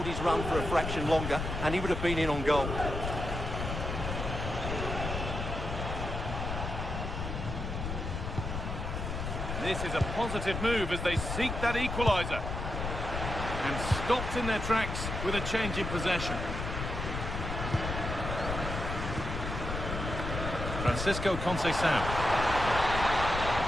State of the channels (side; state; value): left; noise; rumble, 4 dB below the sound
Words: his run for a fraction longer, and he would have been in on goal. This is a positive move as they seek that equaliser. And stopped in their tracks with a change in possession. Francisco Conceição.